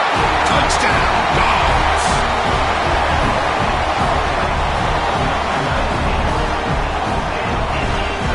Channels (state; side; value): identical; both; correlation 1.00